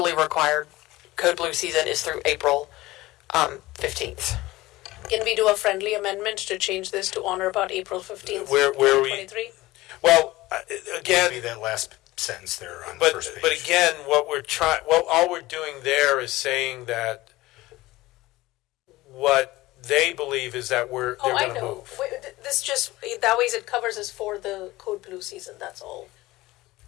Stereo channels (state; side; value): quieter; right; 18.5 dB